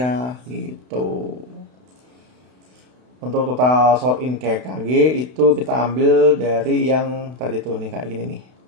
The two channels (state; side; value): late; left; 32 ms